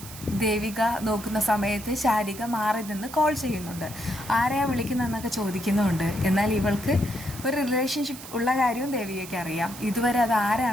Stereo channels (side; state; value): right; noise; hiss, 14 dB below the sound